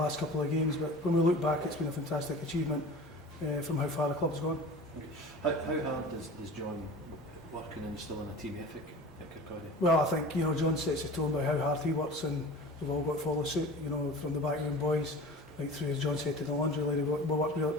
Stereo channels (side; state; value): both; normal; correlation 0.38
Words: couple of games, but when we look back it's been a fantastic achievement from how far the club's gone. Okay. How hard does John working and instilling a team ethic at Kirkcaldy? Well, I think John sets the tone by how hard he works, and we've all got to follow suit, from the backroom boys right through, as John said, to the laundry lady. We work